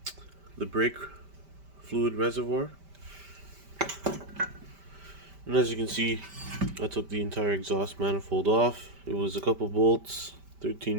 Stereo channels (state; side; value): late; left; 5.1 ms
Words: brake fluid reservoir. And as you can see, I took the entire exhaust manifold off. It was a couple bolts,